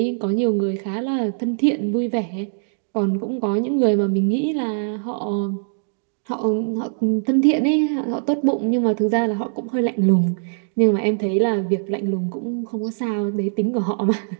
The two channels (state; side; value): silent; left; digital silence